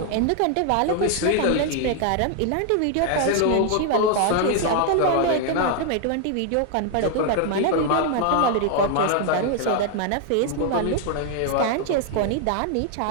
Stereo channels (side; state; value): both; different; correlation 0.00